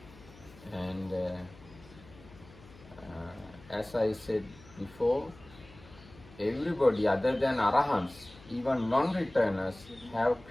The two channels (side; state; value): left; noise; hum, 22 dB below the sound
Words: And as I said before, everybody other than arahants, even non-returners, have